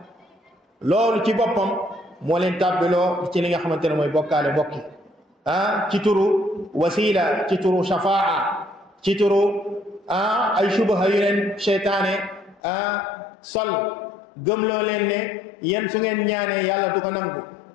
loolu ci boppam moo leen tàbbiloo ci li nga xamante ne mooy bokkaale bokki ci turu wasila ci turu shafaa ci turu ay subaha yu leen seytaane sol gëmloo leen ne yéen su ngeen ñaanee yàlla du ko nangu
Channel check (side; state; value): right; drops out; at 12.6 s